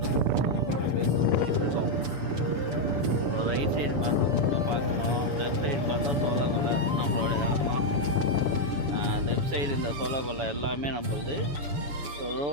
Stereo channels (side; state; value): left; late; 7.0 ms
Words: ரைட் சைடு பார்த்தா பார்க்கணும், லெஃப்ட் சைடு பார்த்தா சோளக்கொல்லை நம்மளோட இடம் தான். லெஃப்ட் சைடு இந்த சோளக்கொல்லை எல்லாமே நம்மளுது.